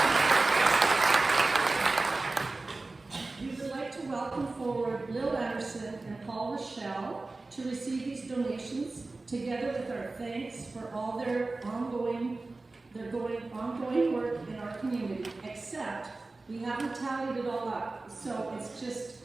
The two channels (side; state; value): left; quieter; 3.3 dB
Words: We would like to welcome forward Lil Anderson and Paul Rochelle to receive these donations, together with our thanks for all their ongoing work in our community, except we haven't tallied it all up, so it's just